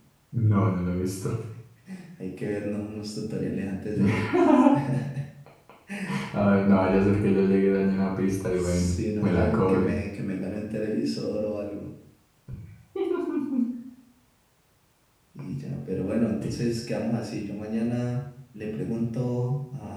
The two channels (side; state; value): both; identical; correlation 1.00